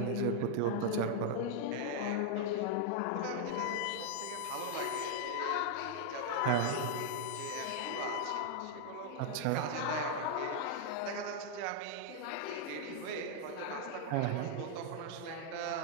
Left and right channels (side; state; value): both; different; correlation 0.00